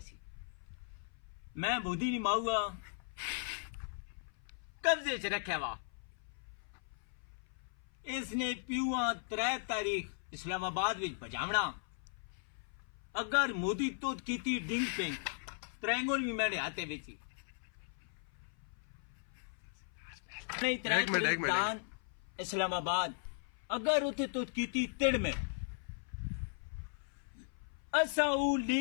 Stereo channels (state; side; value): silent; right; 53 dB below the other